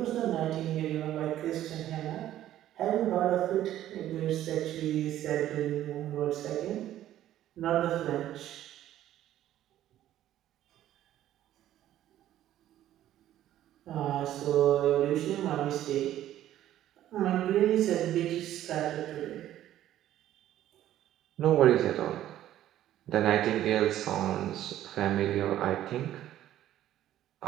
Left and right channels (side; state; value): left; quieter; 12.7 dB